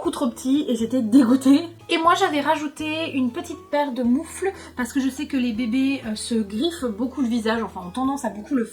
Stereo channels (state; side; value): identical; both; correlation 1.00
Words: trop petit et j'étais dégoûtée. Et moi j'avais rajouté une petite paire de moufles parce que je sais que les bébés se griffent beaucoup le visage, enfin ont tendance à beaucoup le